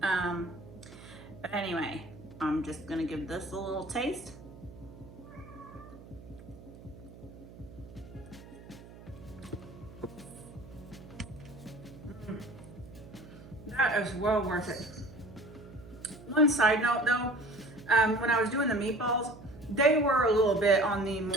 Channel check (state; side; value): noise; right; hum, 17 dB below the sound